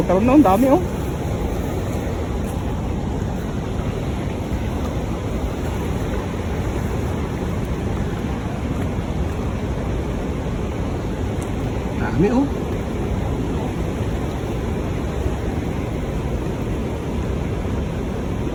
na, ang dami oh. Dami oh.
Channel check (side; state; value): both; identical; correlation 1.00